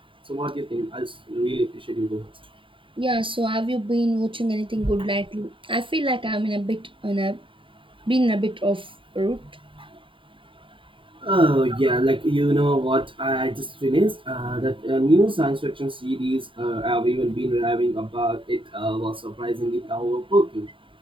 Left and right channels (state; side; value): late; left; 0.25 ms